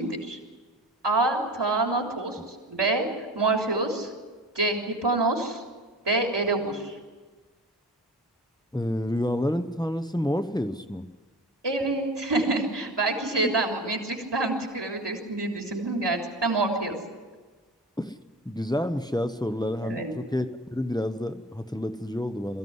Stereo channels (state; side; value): normal; both; correlation 0.36